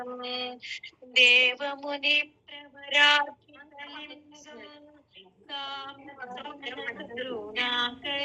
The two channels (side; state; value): both; identical; correlation 1.00